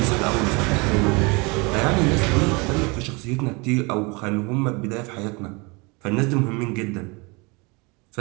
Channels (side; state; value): left; quieter; 28.0 dB